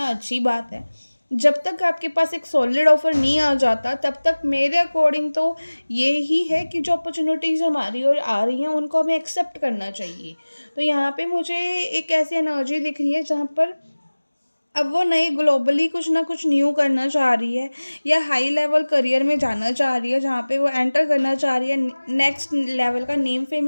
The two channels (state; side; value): inverted; both; correlation -1.00